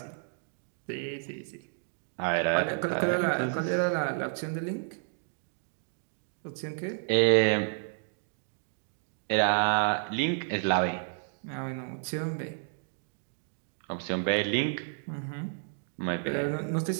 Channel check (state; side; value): silent; left; digital silence